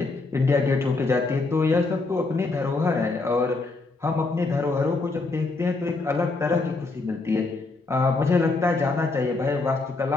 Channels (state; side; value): quieter; right; 3.6 dB